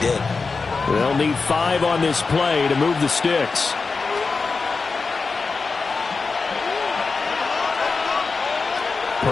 They'll need 5 on this play to move the sticks.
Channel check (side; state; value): right; quieter; 4.4 dB